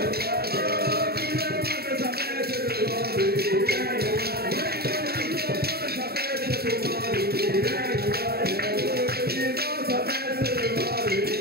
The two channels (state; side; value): late; left; 0.46 ms